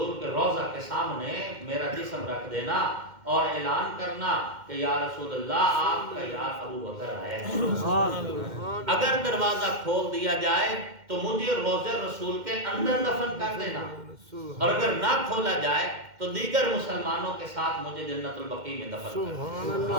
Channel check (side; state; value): left; late; 2.1 ms